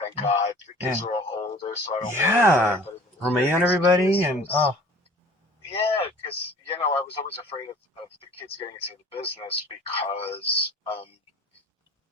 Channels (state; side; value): normal; both; correlation 0.47